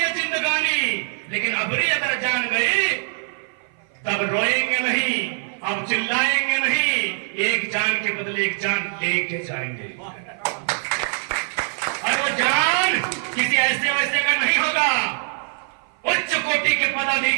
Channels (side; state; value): left; silent; 56 dB below the other